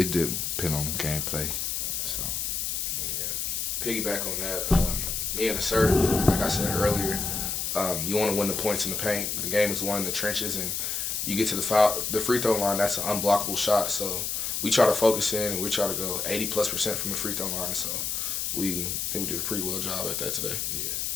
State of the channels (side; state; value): left; noise; hiss, 1 dB below the sound